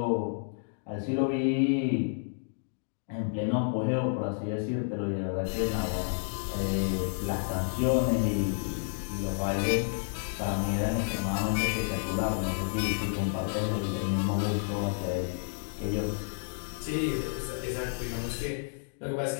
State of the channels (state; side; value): silent; right; digital silence